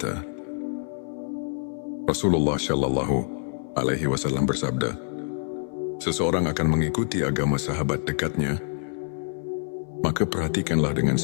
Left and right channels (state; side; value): silent; right; 58 dB below the other